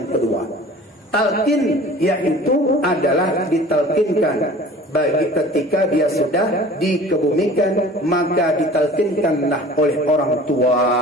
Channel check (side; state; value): both; normal; correlation 0.44